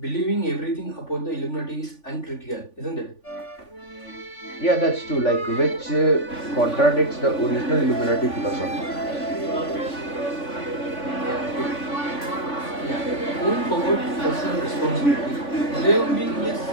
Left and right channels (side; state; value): right; late; 3.5 ms